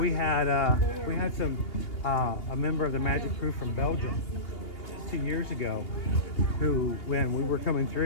had a member of the Magic Crew from Belgium 2 years ago who, when we were coming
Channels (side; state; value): right; late; 2.8 ms